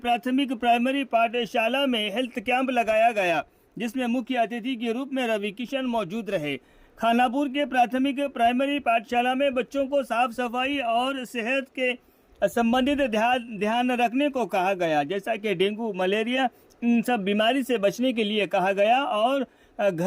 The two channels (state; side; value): identical; both; correlation 1.00